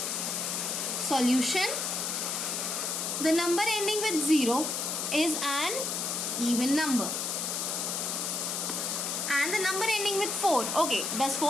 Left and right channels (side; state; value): left; noise; hiss, 1 dB below the sound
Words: Solution. The number ending with 0 is an even number. And the number ending with 4. Okay, does